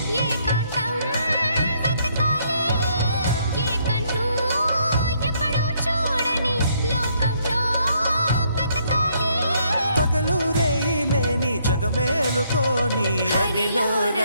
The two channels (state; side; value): inverted; both; correlation -0.70